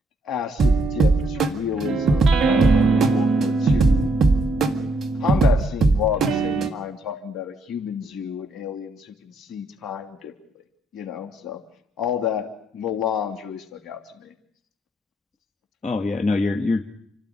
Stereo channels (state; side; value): normal; both; correlation 0.73